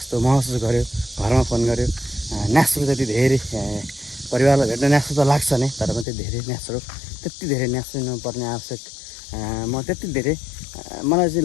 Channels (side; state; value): right; drops out; at 6.1 s